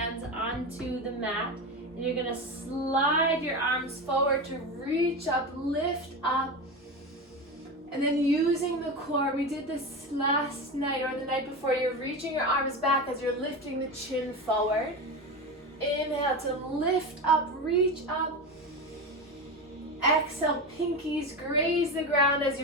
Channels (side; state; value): both; normal; correlation 0.22